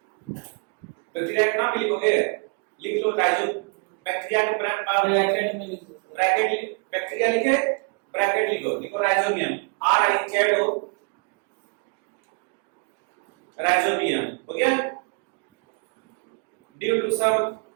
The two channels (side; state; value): left; quieter; 36.0 dB